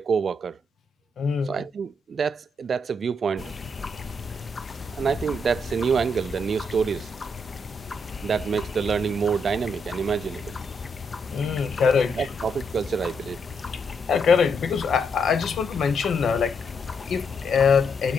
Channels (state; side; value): normal; both; correlation 0.77